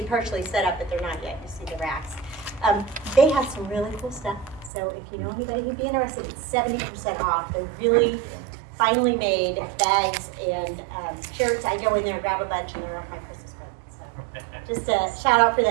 partially set up, but they're not yet. You see the racks. They have some really cool stuff. So if you know anybody who'd be interested, it's 70% off. They're really finely made bags and shirts. I go in there and grab a bunch, and they're off my Christmas present. So just a shout out for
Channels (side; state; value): left; drops out; at 4.7 s